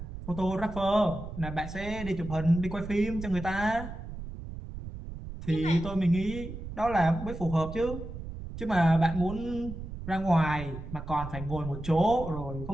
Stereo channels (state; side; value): noise; right; rumble, 10 dB below the sound